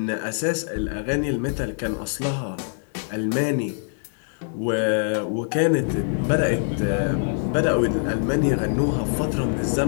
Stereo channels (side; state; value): right; silent; digital silence